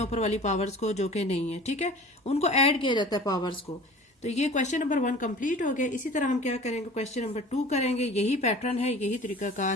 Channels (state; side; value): normal; both; correlation 0.42